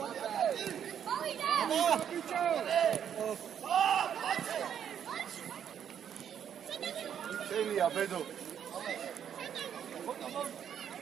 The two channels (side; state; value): left; quieter; 8.8 dB